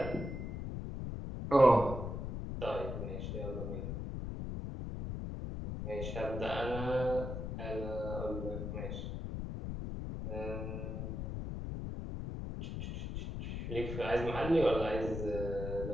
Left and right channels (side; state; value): left; noise; rumble, 5 dB below the sound